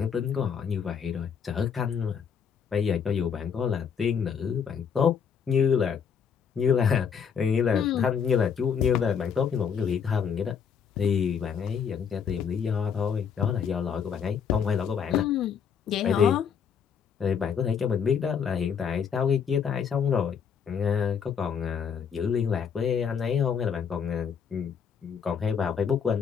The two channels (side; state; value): right; quieter; 7.1 dB